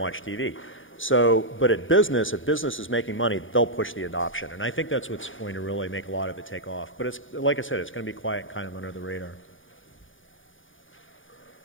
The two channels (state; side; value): late; right; 0.57 ms